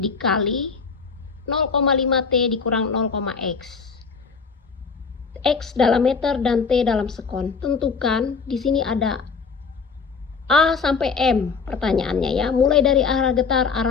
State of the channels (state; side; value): quieter; right; 5.3 dB